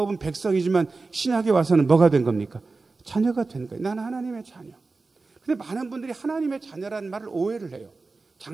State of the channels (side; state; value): left; quieter; 3.8 dB